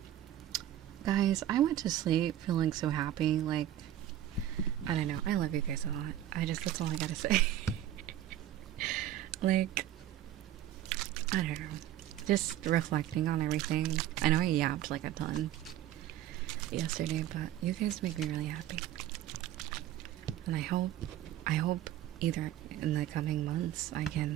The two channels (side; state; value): left; quieter; 12.5 dB